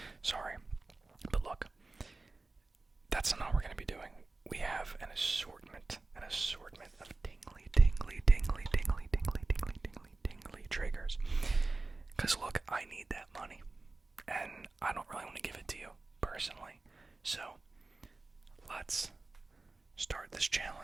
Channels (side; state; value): left; quieter; 3.4 dB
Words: Sorry. But look, that's not what we're going to be doing. We have an assortment of tingly triggers. Because look, I need that money. And I don't really want to give it to you, personally. So, let's start this